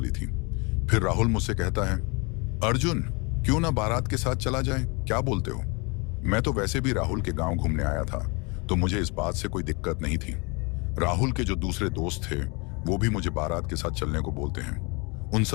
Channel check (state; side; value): quieter; right; 30.0 dB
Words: थी। फिर राहुल मुझसे कहता है, अर्जुन क्यों ना बारात के साथ चला जाए, क्या बोलते हो? मैं तो वैसे भी राहुल के गांव घूमने आया था, तो मुझे इस बात से कोई दिक्कत नहीं थी। राहुल के जो दूसरे दोस्त थे वो भी मुझे बारात के साथ चलने को बोलते हैं। उन